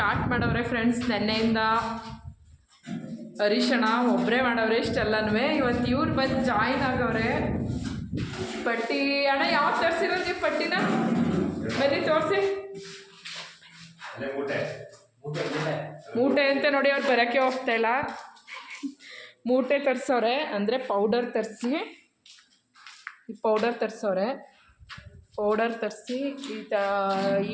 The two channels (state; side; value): identical; both; correlation 1.00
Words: ಮಾಡವ್ರೆ ಫ್ರೆಂಡ್ಸ್. ನೆನ್ನೆಯಿಂದ ಹರೀಶಣ್ಣ ಒಬ್ಬರೇ ಮಾಡವ್ರೆ ಇಷ್ಟೆಲ್ಲನೂ. ಇವತ್ತು ಇವ್ರು ಬಂದು ಜಾಯಿನ್ ಆಗವ್ರೆ. ಪಟ್ಟಿ ಅಣ್ಣ ಯಾವ್ದು ತರಿಸಿರೋದು ನೀವು ಪಟ್ಟಿನ? ಬನ್ನಿ ತೋರಿಸಿ. ಮೂಟೆ ಅಂತ ನೋಡಿ, ಅವ್ರು ಬರೋಕ್ಕೆ ಹೋಗ್ತಾಯಿಲ್ಲ. ಮೂಟೆ ತರಿಸವ್ರೆ, ಅಂದರೆ ಪೌಡರ್ ತರಿಸಿ, ಈ ಪೌಡರ್ ತರಿಸವ್ರೆ. ಪೌಡರ್ ತರಿಸಿ